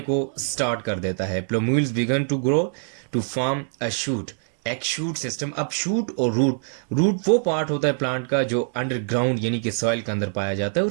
को स्टार्ट कर देता है। Plumules begin to grow to form a shoot, एक शूट सिस्टम। अब शूट और रूट, रूट वो पार्ट होता है प्लांट का जो अंडरग्राउंड यानी कि सॉइल के अंदर पाया जाता है,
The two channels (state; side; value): silent; left; 63 dB below the other